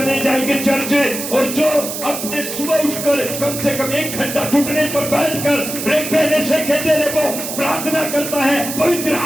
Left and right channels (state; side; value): noise; right; hiss, 6 dB below the sound